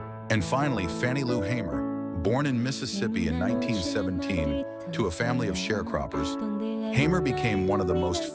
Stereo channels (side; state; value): both; identical; correlation 1.00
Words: And finally, Fannie Lou Hamer. Born in Mississippi in 1917 to a family of sharecroppers, Hamer became one of the most